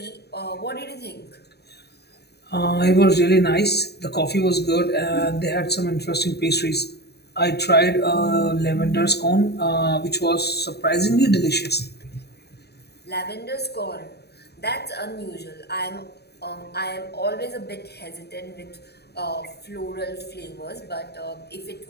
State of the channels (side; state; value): right; late; 0.48 ms